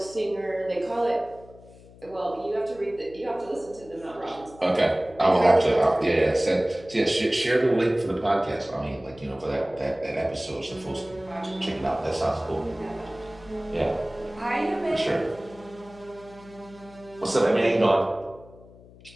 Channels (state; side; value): noise; left; hum, 22 dB below the sound